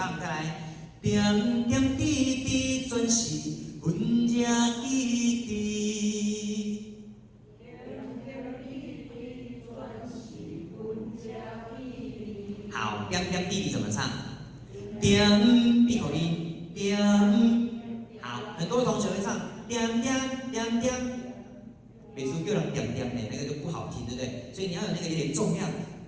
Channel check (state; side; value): identical; both; correlation 1.00